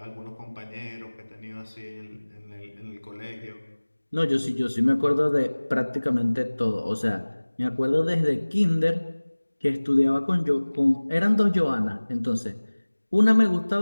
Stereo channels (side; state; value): both; inverted; correlation -1.00